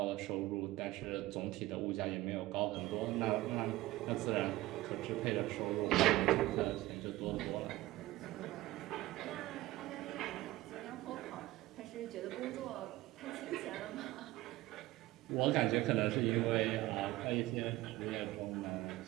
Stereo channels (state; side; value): quieter; left; 17.6 dB